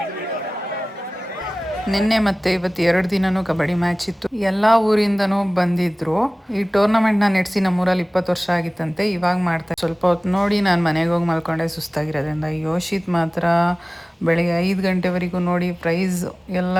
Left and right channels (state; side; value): normal; both; correlation 0.98